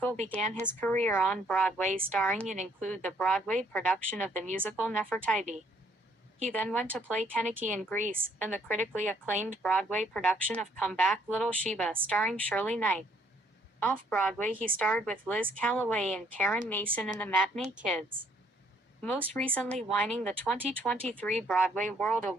began his career on Broadway starring in include the Broadway production of the musical Nefertiti. He then went to play Keniki in Grease, and the critically acclaimed Broadway production of Come Back Little Sheba starring Shirley Knight. Off-Broadway he starred with Liz Callaway and Karen Mason in The Matinee Kids. Most recently winning the 2023 Broadway World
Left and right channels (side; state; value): both; normal; correlation 0.66